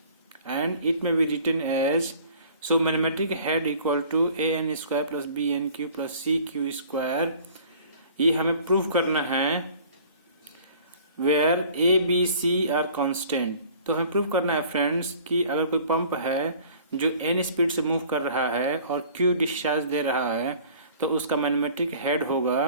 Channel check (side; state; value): both; inverted; correlation -0.50